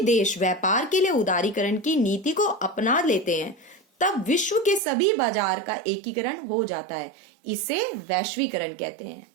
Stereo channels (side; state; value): left; drops out; at 4.8 s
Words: देश व्यापार के लिए उदारीकरण की नीति को अपना लेते हैं तब विश्व के सभी बाजार का एकीकरण हो जाता है। इसे वैश्वीकरण कहते हैं।